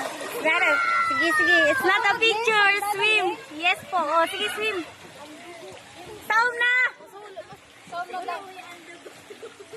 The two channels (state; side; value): identical; both; correlation 1.00